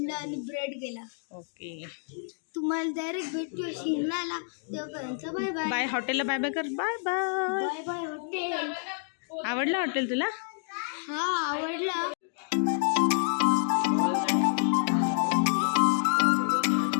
आणि ब्रेड केला. ओके, तुम्हाला डायरेक्ट भेटूया शिमलाला. तेव्हापर्यंत बाय बाय. बाय. हॉटेलला बाय बाय कर. Bye bye. Bye bye hotel. आवडलं हॉटेल तुला? हा आवडलं.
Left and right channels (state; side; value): silent; right; digital silence